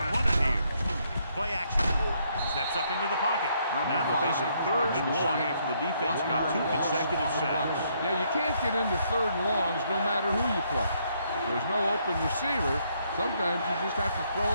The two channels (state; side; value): inverted; both; correlation -0.72